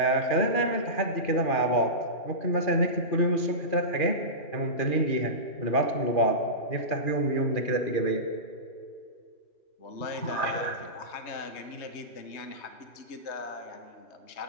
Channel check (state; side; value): late; right; 2.4 ms